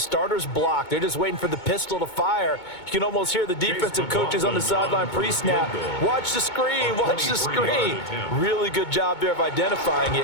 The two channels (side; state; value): right; late; 2.2 ms